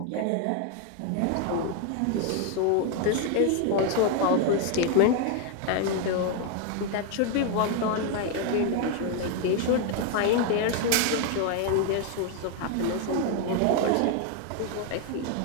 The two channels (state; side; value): different; both; correlation 0.01